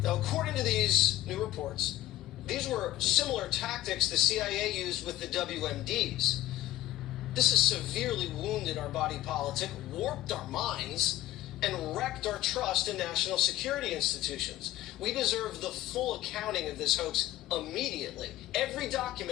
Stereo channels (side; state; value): right; quieter; 15.0 dB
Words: Now, according to these new reports, these were similar tactics the CIA used with the WMDs. This has severely wounded our body politic, warped our minds, and wrecked our trust in national security institutions. We deserve the full accounting of this hoax immediately, every